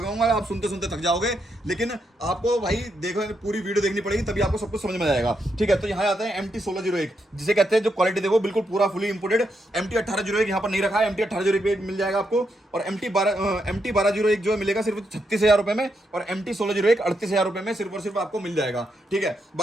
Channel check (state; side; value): normal; both; correlation 0.81